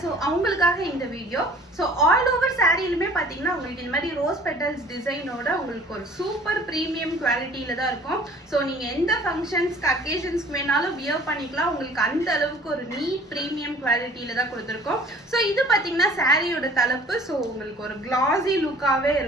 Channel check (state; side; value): normal; both; correlation 0.50